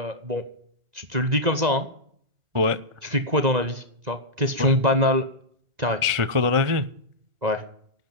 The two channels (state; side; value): late; left; 1.5 ms